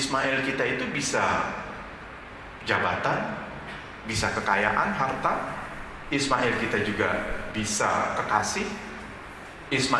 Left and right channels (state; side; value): identical; both; correlation 1.00